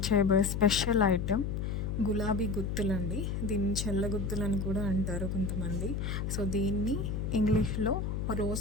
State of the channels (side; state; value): left; noise; hum, 2 dB below the sound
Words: చేయబోయే స్పెషల్ ఐటెం గులాబీ గుత్తులండి. దీన్ని చెల్ల గుత్తులని కూడా అంటారు కొంతమంది. సో దీన్ని ఇంగ్లీష్లో